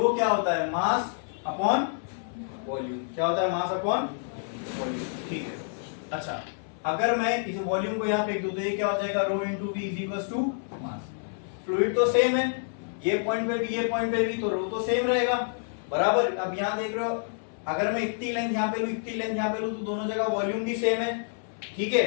क्या होता है? Mass upon volume. क्या होता है? Mass upon volume. ठीक है। अच्छा, अगर मैं इस वॉल्यूम को यहाँ फेंक दूं तो ये क्या हो जाएगा? Rho into V is equal to mass. Fluid तो सेम है, ये पॉइंट पे भी ये पॉइंट पे भी, तो रो तो सेम रहेगा बराबर। अब यहाँ देख रहे हो, अगर मैं इतनी लेंथ यहाँ पे लूं, इतनी लेंथ यहाँ पे लूं, तो दोनों जगह वॉल्यूम भी सेम है। ठीक है,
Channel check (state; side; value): silent; right; 59 dB below the other